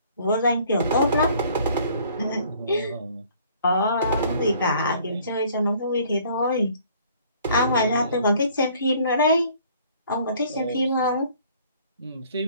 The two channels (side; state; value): both; inverted; correlation -0.57